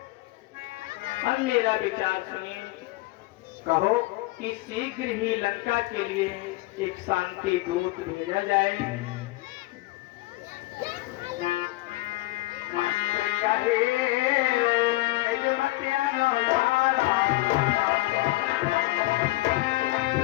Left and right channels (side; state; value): right; quieter; 19.9 dB